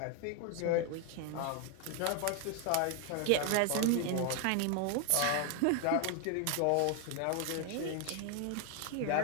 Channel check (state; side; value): different; both; correlation 0.01